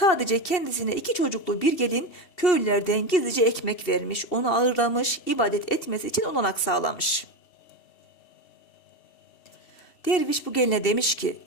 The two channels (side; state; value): right; late; 2.7 ms